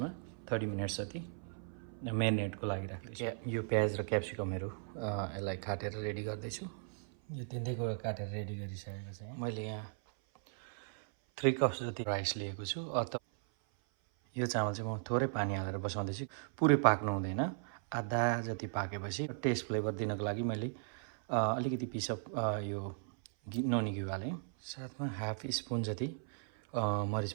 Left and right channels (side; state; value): left; silent; 53 dB below the other